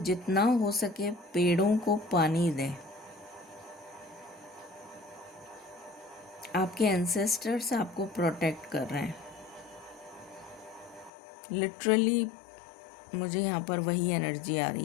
जितना हो सके पेड़ों को पानी दें। आपके एंसेस्टर्स आपको प्रोटेक्ट कर रहे हैं। लिटरली मुझे यहाँ पर वही एनर्जी आ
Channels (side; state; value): right; drops out; at 11.1 s